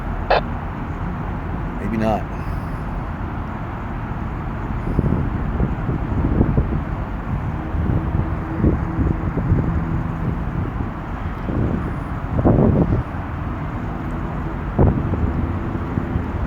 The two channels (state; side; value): identical; both; correlation 1.00